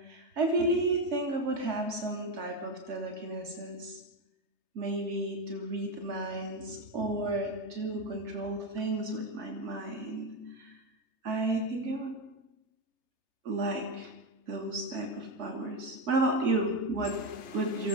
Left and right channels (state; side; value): late; left; 3.3 ms